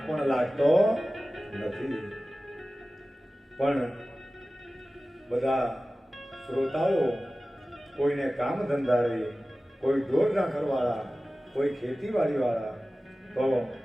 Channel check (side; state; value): both; normal; correlation 0.96